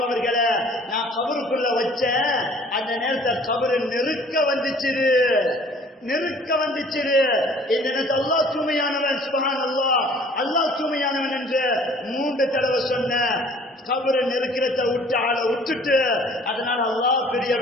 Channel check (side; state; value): both; normal; correlation 0.53